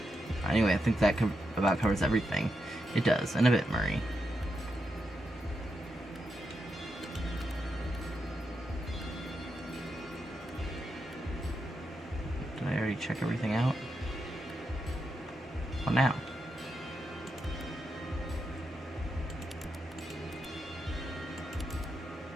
Anyway, I think that about covers everything. It does, and a bit, Murray. Did I already check everything out? What now?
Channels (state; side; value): normal; both; correlation 0.85